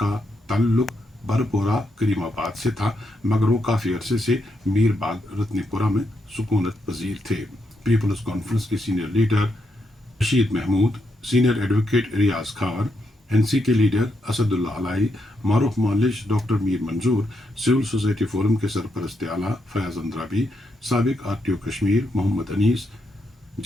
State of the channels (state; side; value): normal; both; correlation 0.81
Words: ताल्लुक़ बरपोरा करीमाबाद से था, मगर वो काफ़ी अरसे से मीरबाग रत्नीपुरा में सुकूनत पजीर थे। पीपल्स कॉन्फ्रेंस के senior leader Rashid Mahmood, senior advocate Riyaz Khan, NC के लीडर असदुल्ला अलाई, मारूफ मौलिश doctor Mir Manzoor, civil society forum के सरपरस्त आला फयाज अंद्राबी, साबिक RTO Kashmir Mohammad Anees,